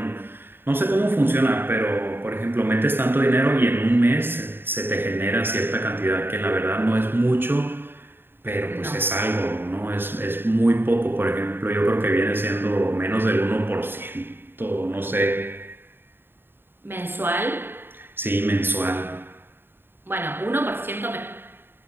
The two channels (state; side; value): late; left; 0.10 ms